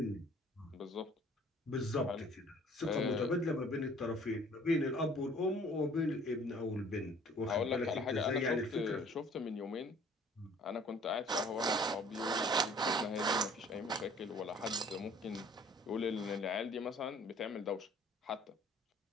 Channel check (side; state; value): both; normal; correlation 0.54